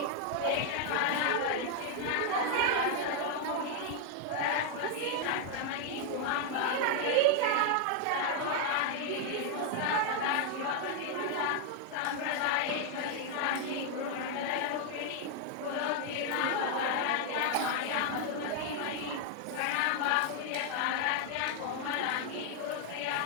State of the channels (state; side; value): different; both; correlation 0.00